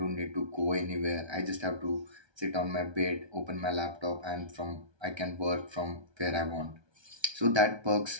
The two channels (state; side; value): late; left; 1.3 ms